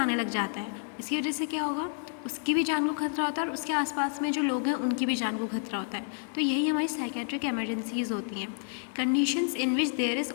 लग जाता है। इसकी वजह से क्या होगा, उसकी भी जान को खतरा होता है और उसके आसपास में जो लोग हैं उनकी भी जान को खतरा होता है। तो यही हमारी साइकेट्रिक इमरजेंसीज़ होती हैं, conditions in which there is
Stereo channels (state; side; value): silent; right; digital silence